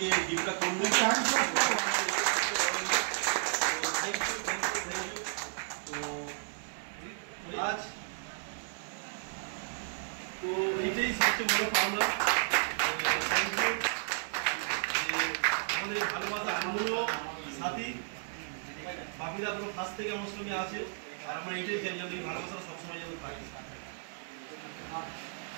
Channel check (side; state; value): left; silent; 55 dB below the other